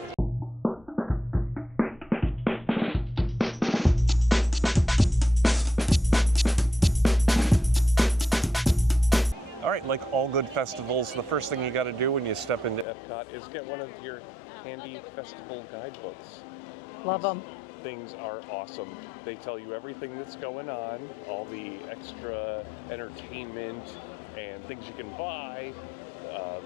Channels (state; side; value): drops out; right; at 12.9 s